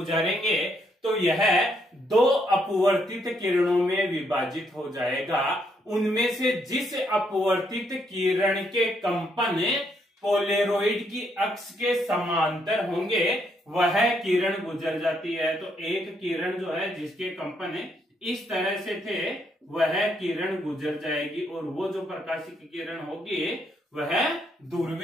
तो यह दो अपवर्तित किरणों में विभाजित हो जाएगा। उनमें से जिस अपवर्तित किरण के कंपन पोलेरोइड की अक्ष के समांतर होंगे वह किरण गुजर जाती है। तो एक किरण जो है जिसके कंपन इस तरह से थे वह किरण गुजर जाएगी और वो जो प्रकाशिक किरण होगी वह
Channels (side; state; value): both; normal; correlation 0.74